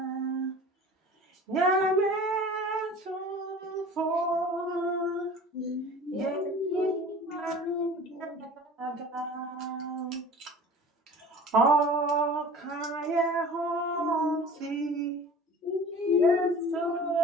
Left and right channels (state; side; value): normal; both; correlation 0.42